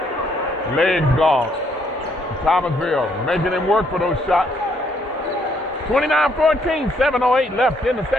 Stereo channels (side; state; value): both; normal; correlation 0.69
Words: Legs gone. Thomasville making him work for those shots. 29-14, 7:08 left in the